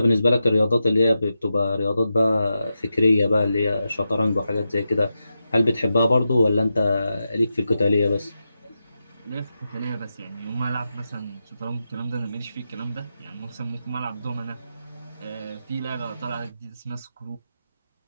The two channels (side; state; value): both; inverted; correlation -0.89